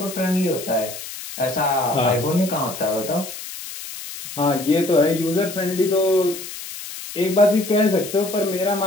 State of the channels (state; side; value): noise; left; hiss, 11 dB below the sound